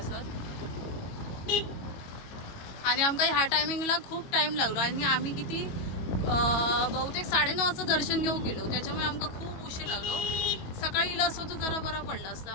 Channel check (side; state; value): right; late; 22 ms